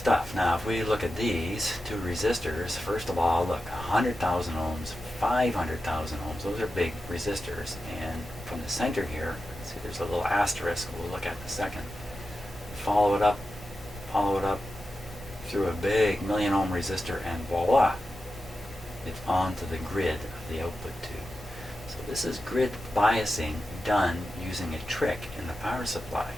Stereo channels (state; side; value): normal; both; correlation 0.91